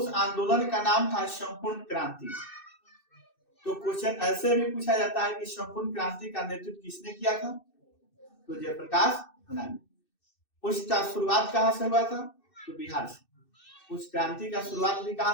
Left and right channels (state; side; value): late; right; 2.6 ms